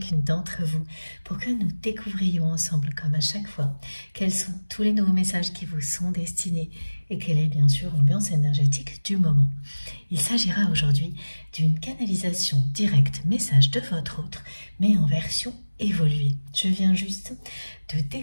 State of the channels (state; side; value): inverted; both; correlation -1.00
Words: d'entre vous pour que nous découvrions ensemble, comme à chaque fois, quels sont tous les nouveaux messages qui vous sont destinés et quelle est bien sûr l'ambiance énergétique du moment. Il s'agira aujourd'hui d'une canalisation directe message de votre autre, mais en version évoluée. Je viens juste de